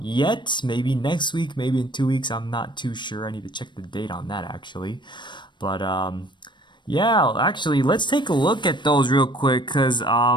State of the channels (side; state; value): right; late; 0.22 ms